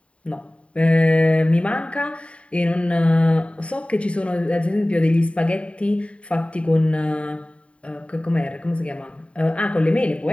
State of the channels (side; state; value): right; late; 0.062 ms